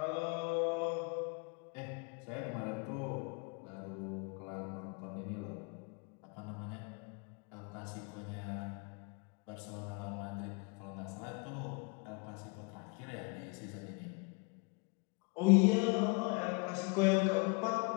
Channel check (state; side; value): quieter; right; 32.2 dB